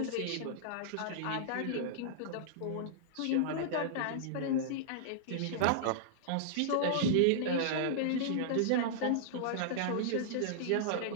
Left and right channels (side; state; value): both; different; correlation -0.02